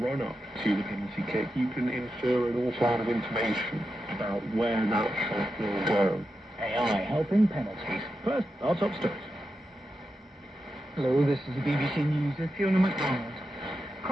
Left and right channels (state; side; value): normal; both; correlation 0.88